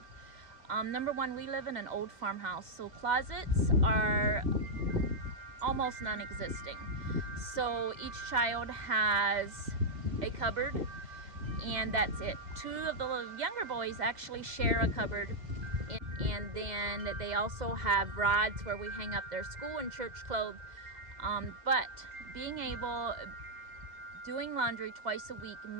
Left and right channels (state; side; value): late; left; 2.0 ms